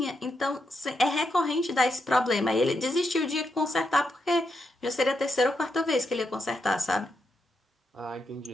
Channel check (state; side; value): normal; both; correlation 0.83